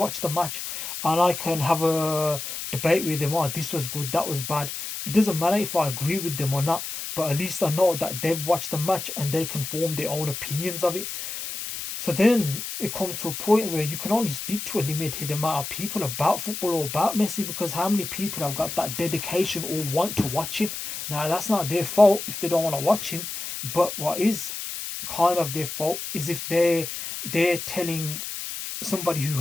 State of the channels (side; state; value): left; noise; hiss, 7 dB below the sound